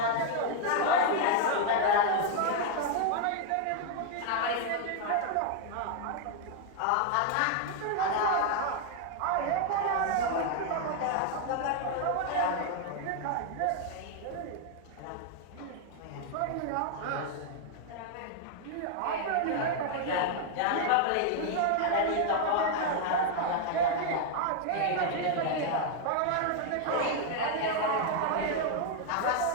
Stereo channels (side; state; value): both; different; correlation 0.00